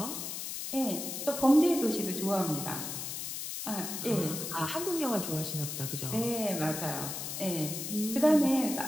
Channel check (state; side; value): noise; left; hiss, 5 dB below the sound